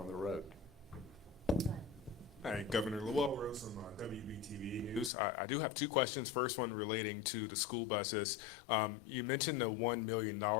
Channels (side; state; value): right; drops out; at 5.1 s